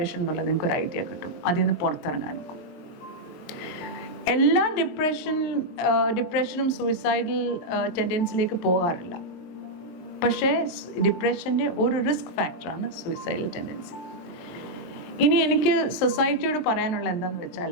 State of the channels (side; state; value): right; late; 23 ms